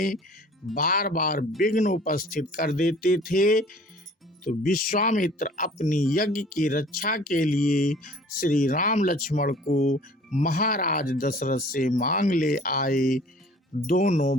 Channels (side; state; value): both; normal; correlation 0.50